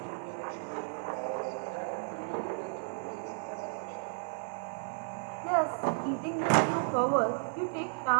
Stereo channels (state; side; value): silent; left; digital silence